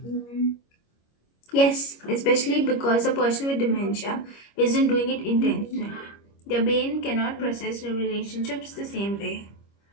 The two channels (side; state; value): right; late; 25 ms